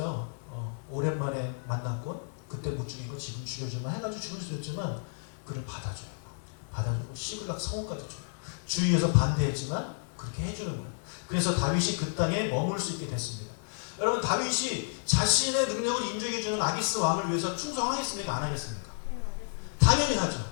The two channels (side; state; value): right; silent; 57 dB below the other